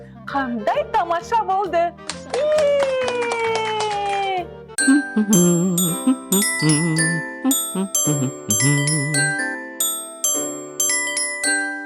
Қандай тамаша болды.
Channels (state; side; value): identical; both; correlation 1.00